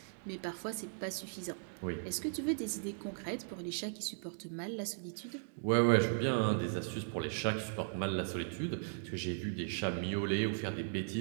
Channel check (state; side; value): silent; left; digital silence